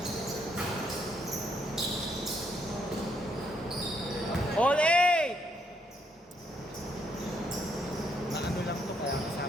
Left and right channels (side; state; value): both; normal; correlation 0.73